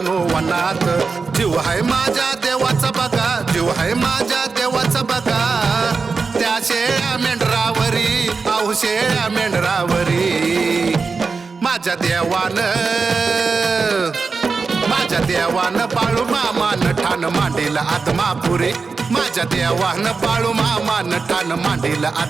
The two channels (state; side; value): quieter; left; 4.6 dB